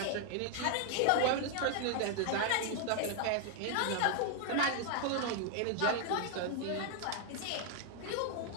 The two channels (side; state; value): both; different; correlation 0.00